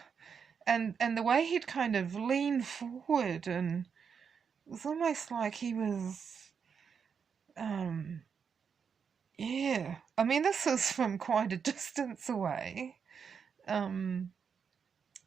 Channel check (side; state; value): left; quieter; 6.6 dB